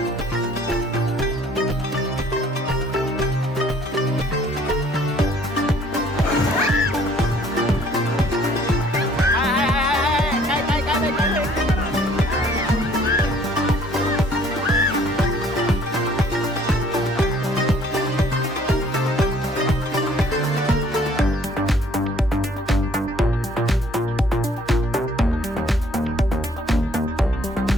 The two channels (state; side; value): normal; both; correlation 0.59